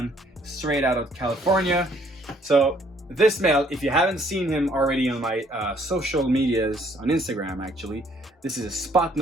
straight out of California. So this male, if you haven't seen him already on my social medias, on Instagram actually, this is a spot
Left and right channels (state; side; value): normal; both; correlation 0.64